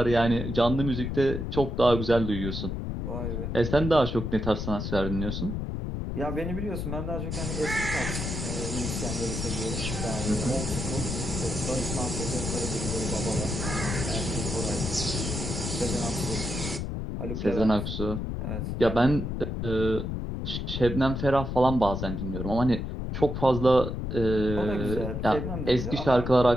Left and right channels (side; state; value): left; noise; rumble, 3 dB below the sound